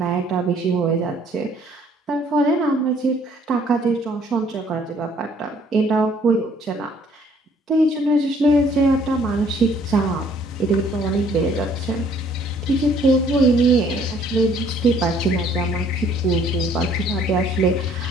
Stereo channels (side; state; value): both; normal; correlation 0.61